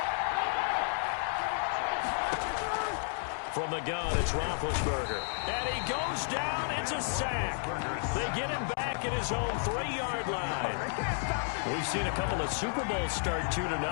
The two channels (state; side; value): silent; right; digital silence